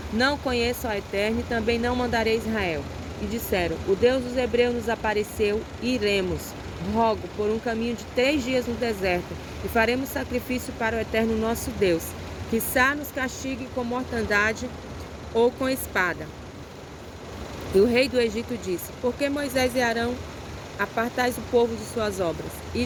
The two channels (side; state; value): both; identical; correlation 1.00